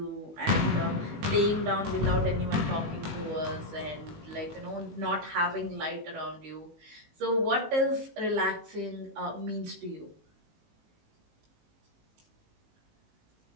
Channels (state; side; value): late; left; 19 ms